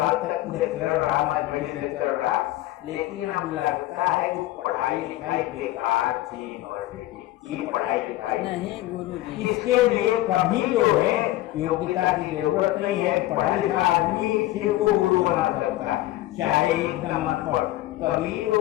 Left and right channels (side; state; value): right; quieter; 16.0 dB